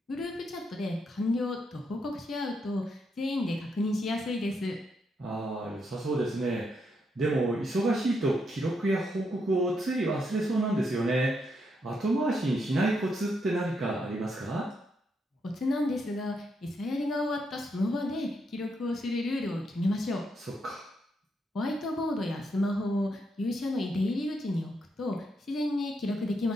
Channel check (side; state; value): both; normal; correlation 0.79